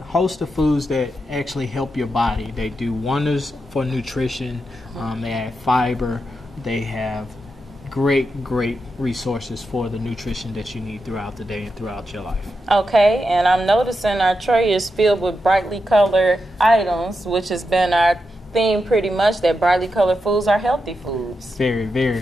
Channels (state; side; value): normal; both; correlation 0.87